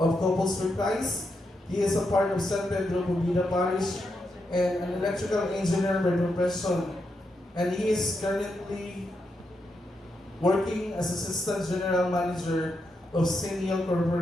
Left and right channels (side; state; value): both; normal; correlation 0.83